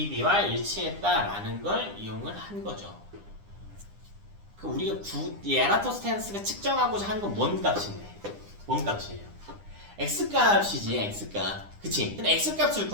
b와 일치했다라는 걸 이용을 한 거죠. 그 우리가 이 에라토스테네스가 측정하고자 하는 건 뭔 값인데? 뭔 값이에요? x값이지, x값. 그치? 근데 x값을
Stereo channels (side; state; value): left; late; 9.9 ms